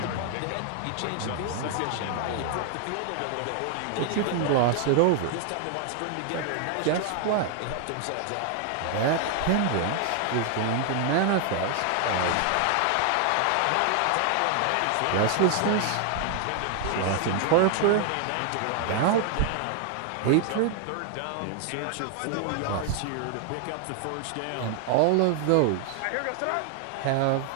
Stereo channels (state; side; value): different; both; correlation 0.00